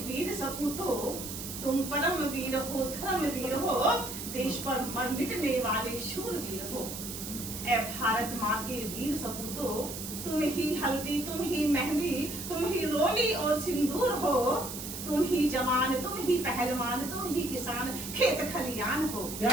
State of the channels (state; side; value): noise; right; hiss, 8 dB below the sound